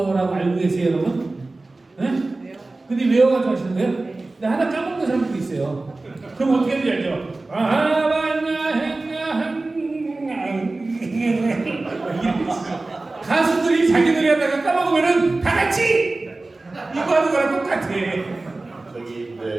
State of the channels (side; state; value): left; quieter; 3.2 dB